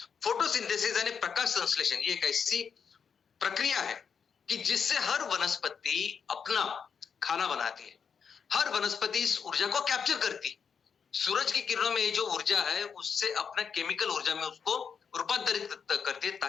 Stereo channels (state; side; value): quieter; right; 6.6 dB